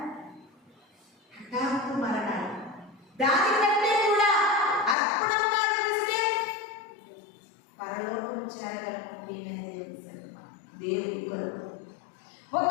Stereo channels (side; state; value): right; drops out; at 5.0 s